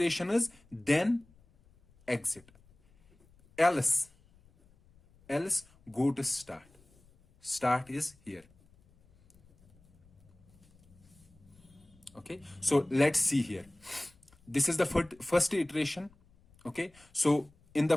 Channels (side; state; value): left; noise; rumble, 29 dB below the sound